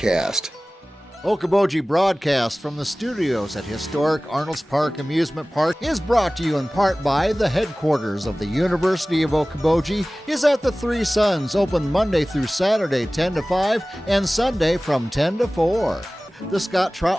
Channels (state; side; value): normal; both; correlation 0.98